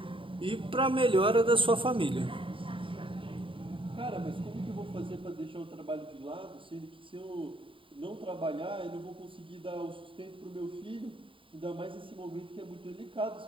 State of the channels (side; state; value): left; late; 0.25 ms